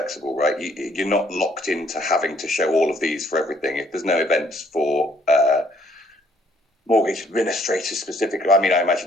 right? You're not locked into having to show all of these for everything. If there's no events for mortgage administrators specifically, I mean, I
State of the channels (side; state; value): both; normal; correlation 0.65